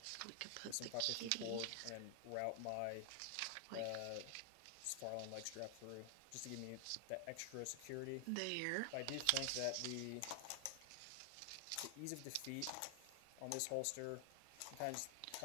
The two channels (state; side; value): different; both; correlation 0.00